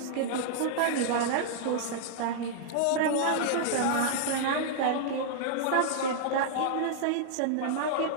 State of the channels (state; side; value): different; both; correlation -0.02